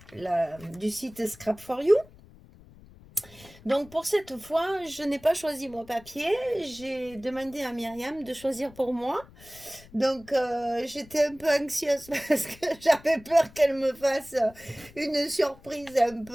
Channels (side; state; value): left; noise; rumble, 23 dB below the sound